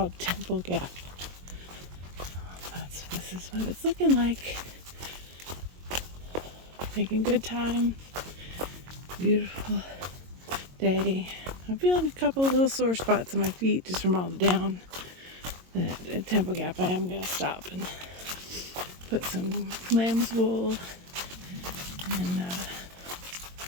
Temple Gap. This is what it's looking like. Making good time. Beautiful day. I'm feeling a couple of little sore spots on my feet just from all the down. That at Temple Gap I am going to stop and put some lamb's wool and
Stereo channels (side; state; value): left; late; 22 ms